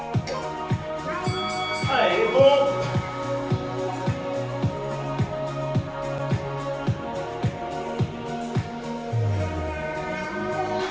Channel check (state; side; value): identical; both; correlation 1.00